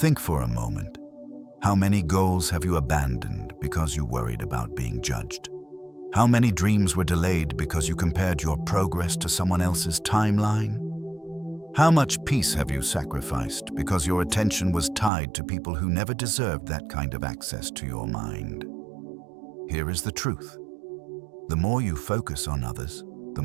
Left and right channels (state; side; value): drops out; left; at 15.1 s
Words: for a moment. How many goals have you abandoned because you worried about being judged? How many dreams were delayed because you compared your progress to someone else's timeline? How much peace have you sacrificed because your attention was tied to people who never deserved that kind of access to your mind? Here is the truth. The more you focus on others, the